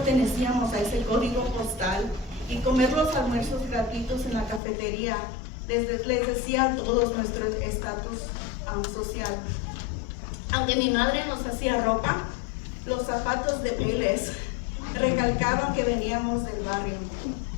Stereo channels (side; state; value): right; drops out; at 4.6 s